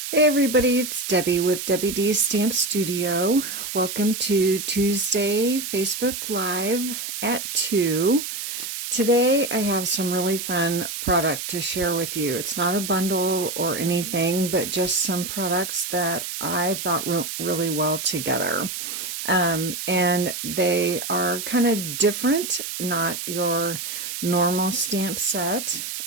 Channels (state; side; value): noise; right; hiss, 6 dB below the sound